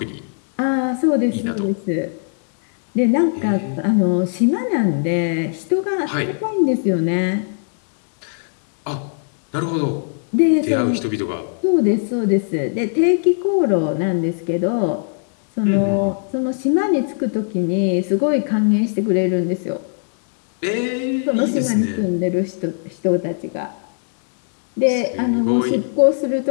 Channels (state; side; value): silent; right; digital silence